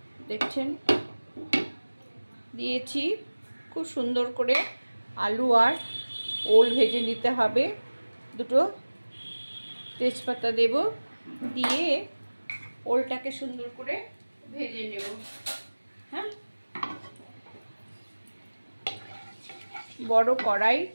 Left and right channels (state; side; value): inverted; both; correlation -1.00